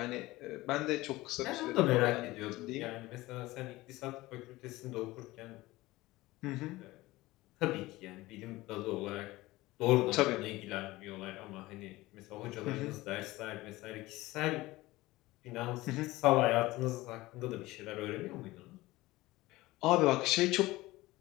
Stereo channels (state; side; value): quieter; right; 19.1 dB